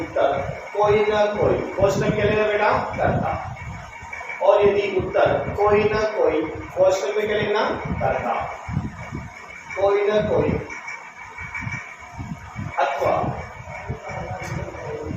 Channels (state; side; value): identical; both; correlation 1.00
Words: उत्तर कोई न कोई, क्वेश्चन क्या लेना बेटा? करता। और यदि उत्तर कोई न कोई, क्वेश्चन में क्या लिखना? करता। कोई न कोई अथवा,